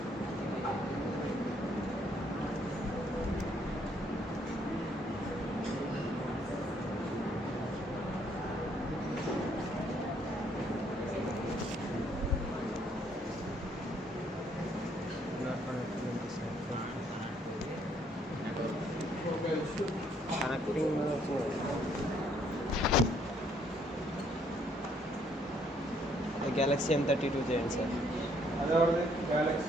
కనెక్టింగ్ గెలాక్సీ M32 చేయండి సార్ అదే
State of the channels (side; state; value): both; normal; correlation 0.67